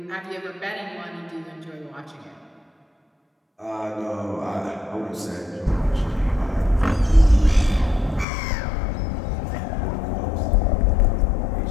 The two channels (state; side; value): drops out; right; at 8.2 s